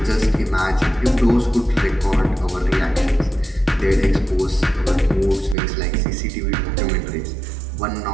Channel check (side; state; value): left; drops out; at 5.6 s